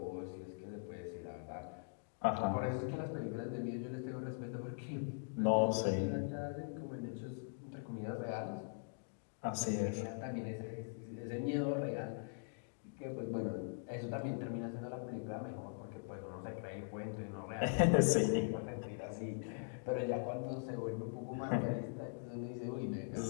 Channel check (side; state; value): right; silent; digital silence